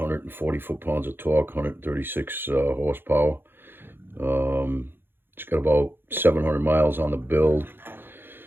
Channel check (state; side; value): late; left; 0.10 ms